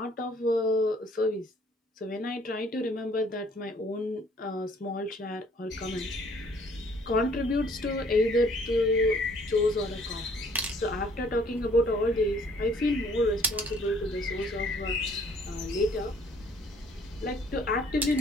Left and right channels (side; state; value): both; normal; correlation 0.59